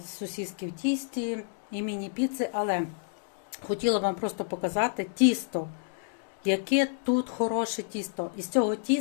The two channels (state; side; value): silent; right; digital silence